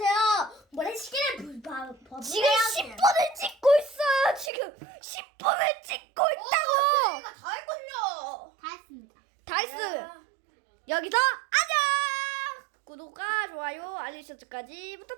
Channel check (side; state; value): left; drops out; at 4.5 s